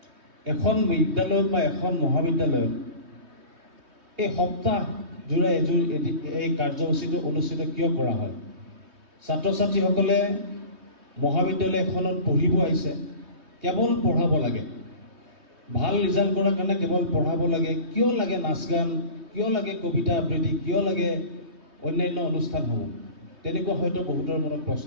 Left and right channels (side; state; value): left; late; 3.2 ms